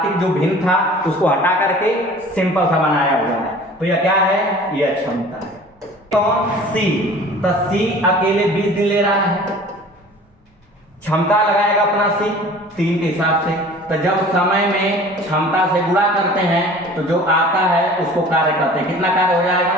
जो भिन्न था उसको हटा करके सिंपल सा बनाया हुआ है। तो यह क्या है, यह क्षमता है। कौन, सी। तो सी अकेले 20 दिन ले रहा है, क्षमता लगाएगा अपना सी 3 के हिसाब से। तो जब समय में क्षमता से गुणा करते हैं तो जो आता है उसको कार्य करते हैं। कितना कार्य हो जाएगा,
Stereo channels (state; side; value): normal; both; correlation 0.45